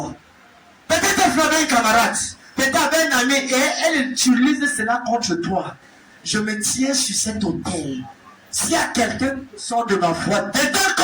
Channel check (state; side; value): identical; both; correlation 1.00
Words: Peut-être tu avais une camarade. Peut-être avec un ami et elle utilise cela contre toi. Je me tiens sur cet hôtel. S'il y a quelqu'un qui sort de ma foi, dedans